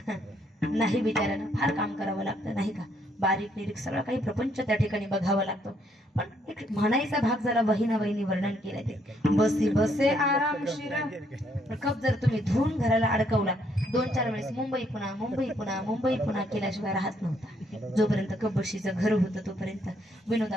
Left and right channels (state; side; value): normal; both; correlation 0.70